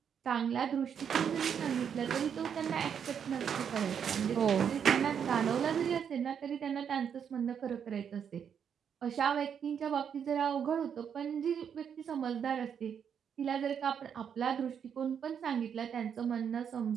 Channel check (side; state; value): left; quieter; 7.8 dB